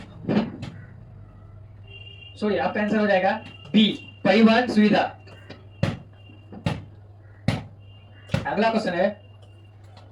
सॉरी, आपका आंसर हो जाएगा बी, परिवहन सुविधा। अगला क्वेश्चन है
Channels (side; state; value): both; identical; correlation 1.00